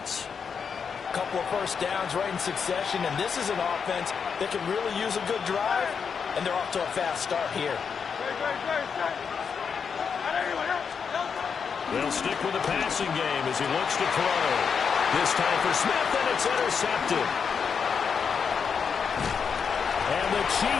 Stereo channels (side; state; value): right; quieter; 6.3 dB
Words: A couple of first downs right in succession, and this is an offense that can really use a good drive, and they're off to a fast start here. They'll stick with the passing game as he looks to throw. This time for Smith, and it's intercepted. And the